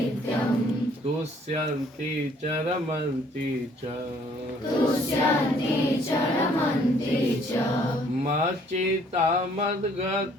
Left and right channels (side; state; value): both; normal; correlation 0.61